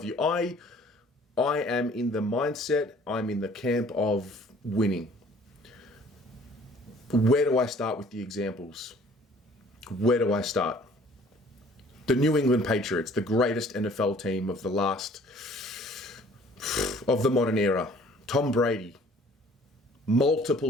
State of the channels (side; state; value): both; normal; correlation 0.54